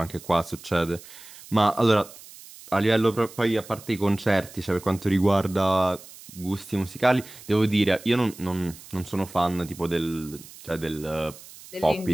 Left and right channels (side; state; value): right; noise; hiss, 18 dB below the sound